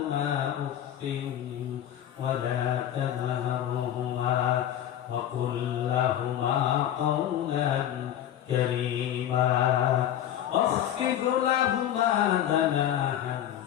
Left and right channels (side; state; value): right; quieter; 11.0 dB